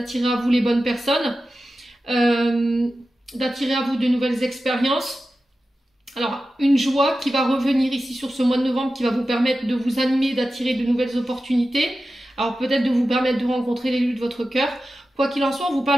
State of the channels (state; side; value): normal; both; correlation 0.93